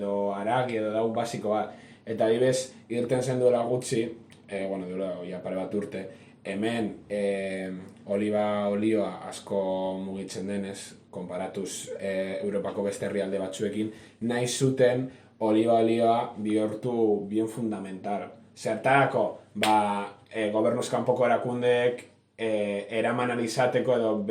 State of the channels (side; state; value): both; identical; correlation 1.00